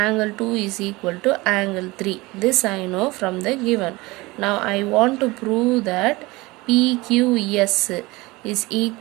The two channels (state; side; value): quieter; left; 22.1 dB